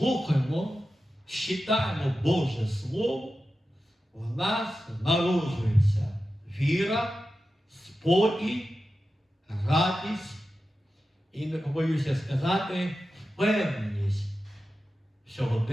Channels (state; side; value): normal; both; correlation 0.93